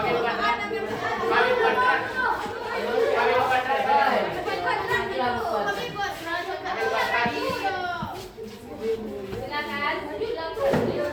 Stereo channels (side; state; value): both; identical; correlation 1.00